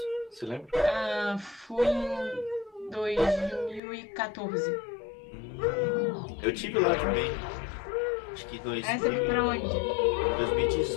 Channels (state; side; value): drops out; right; at 3.8 s